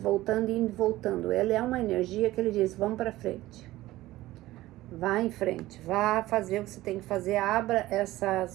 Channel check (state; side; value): quieter; left; 16.9 dB